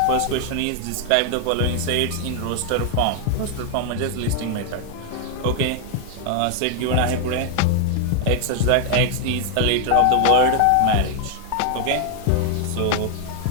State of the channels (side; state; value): both; different; correlation 0.00